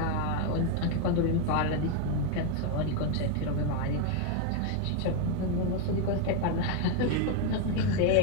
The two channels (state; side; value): different; both; correlation 0.01